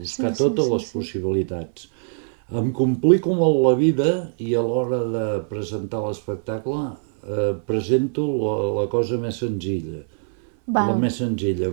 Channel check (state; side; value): silent; left; 62 dB below the other